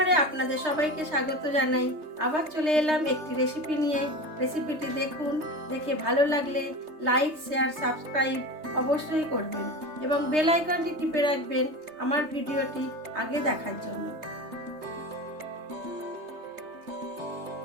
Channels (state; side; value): late; left; 3.3 ms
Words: আপনাদের সবাইকে স্বাগত জানাই। আবার চলে এলাম একটি রেসিপি নিয়ে। রেসিপিটি দেখুন, দেখে ভালো লাগলে লাইক, শেয়ার, সাবস্ক্রাইব অবশ্যই করবেন এবং বেল আইকনটি টিপে রাখবেন আমার ভিডিওটি আগে দেখার জন্য।